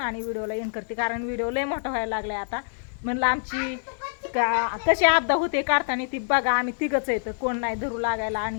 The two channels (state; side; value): silent; right; 61 dB below the other